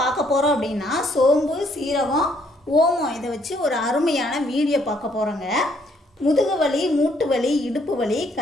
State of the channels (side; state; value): both; normal; correlation 0.68